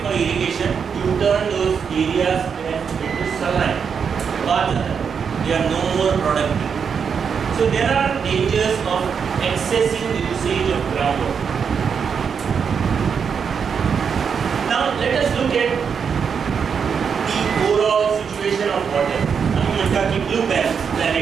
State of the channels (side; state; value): left; quieter; 6.6 dB